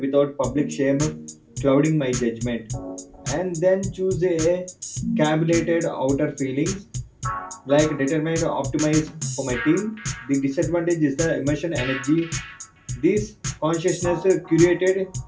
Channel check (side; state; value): both; identical; correlation 1.00